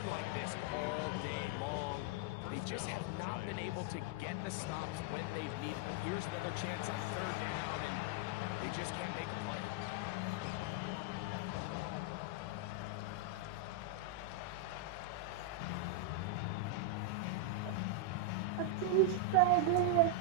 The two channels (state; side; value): different; both; correlation 0.00